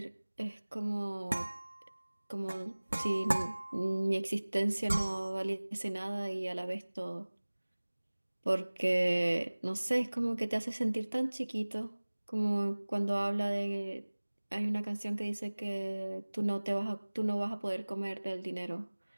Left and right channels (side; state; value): both; inverted; correlation -1.00